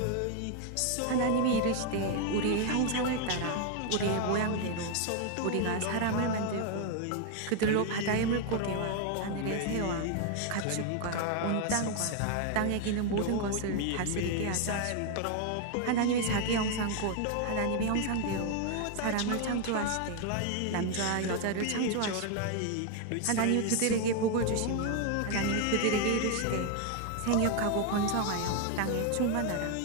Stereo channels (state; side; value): different; both; correlation 0.01